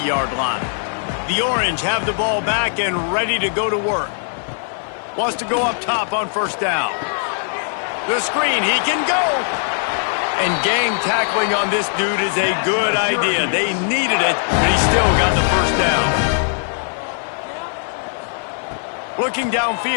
line. The Orange have the ball back and ready to go to work. Wants to go up top on first down. The screen, he can go. And gang tackling on this dude is a good idea. They needed it, but he still got the first down. Looking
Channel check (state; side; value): silent; right; 56 dB below the other